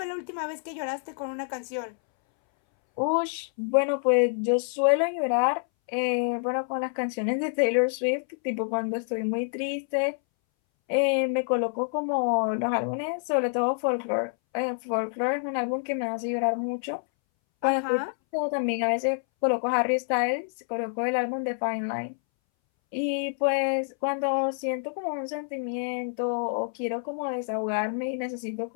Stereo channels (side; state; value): right; silent; 60 dB below the other